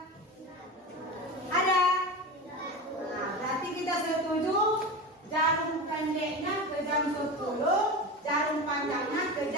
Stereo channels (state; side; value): normal; both; correlation 0.26